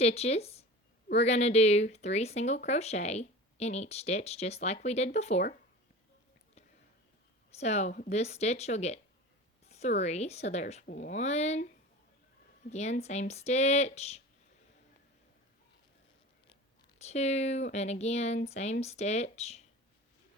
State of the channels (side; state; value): both; normal; correlation 0.36